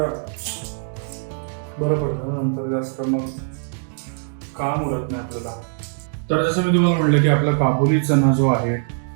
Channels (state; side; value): silent; left; digital silence